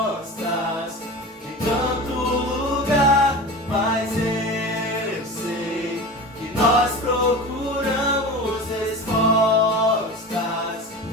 em tanto lugar, mas eu sei que nós procuramos respostas.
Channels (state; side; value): normal; both; correlation 0.31